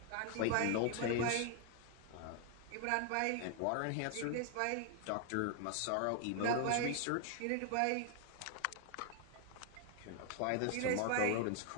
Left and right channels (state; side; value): different; both; correlation 0.00